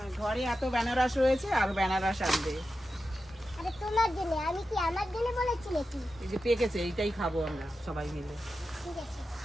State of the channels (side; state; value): both; normal; correlation 0.91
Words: ঘরে এত বেনারস রয়েছে, আর বেনারস আনবে? আরে তোমার জন্য, আমি কি আমার জন্য বলেছি নাকি? এই যে পেকেছে, এইটাই খাবো আমরা সবাই মিলে। ঠিক আছে,